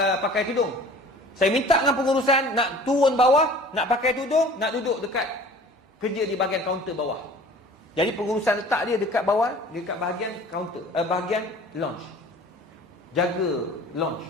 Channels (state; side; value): normal; both; correlation 0.46